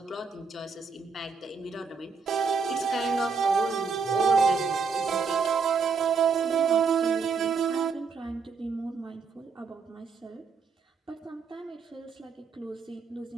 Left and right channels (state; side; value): quieter; left; 5.2 dB